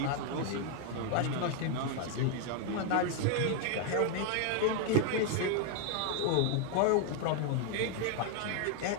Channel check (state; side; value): different; both; correlation 0.00